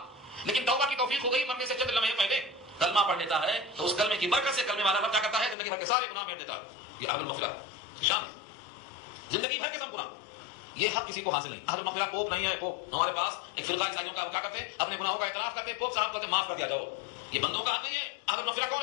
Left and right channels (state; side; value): drops out; right; at 5.6 s